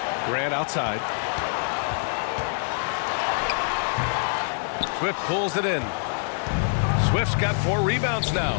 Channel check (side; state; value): right; silent; digital silence